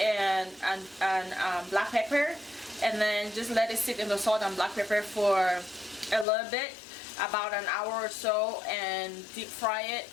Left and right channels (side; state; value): right; drops out; at 6.2 s